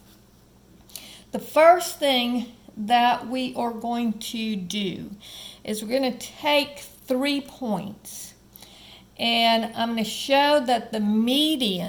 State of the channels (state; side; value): identical; both; correlation 1.00